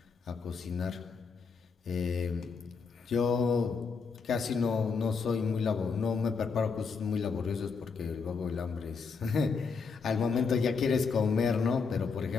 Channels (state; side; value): quieter; right; 5.1 dB